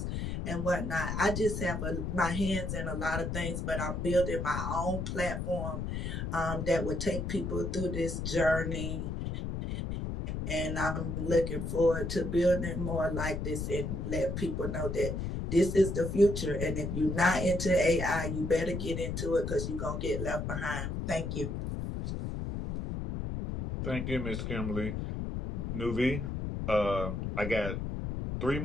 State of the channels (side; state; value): left; noise; rumble, 3 dB below the sound